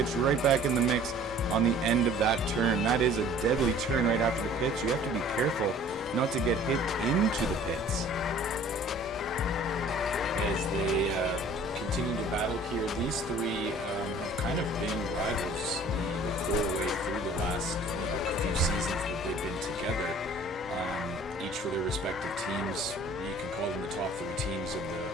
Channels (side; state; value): both; normal; correlation 0.50